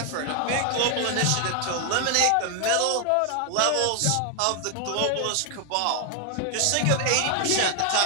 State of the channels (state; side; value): different; both; correlation 0.00